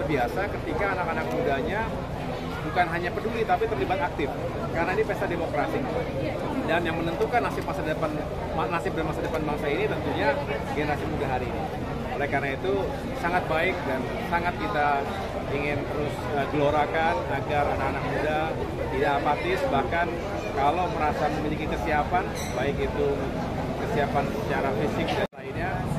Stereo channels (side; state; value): both; identical; correlation 1.00